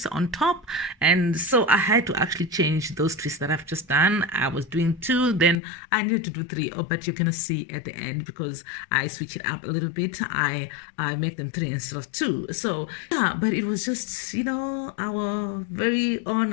on top, and so I had to actually change those twists that I've just done. I was doing 2, then I needed to do 3, but you're gonna see at the end because I switch it up a little bit. I make them 3 instead of 2. So yeah, but it was just our very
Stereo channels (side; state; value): right; drops out; at 5.6 s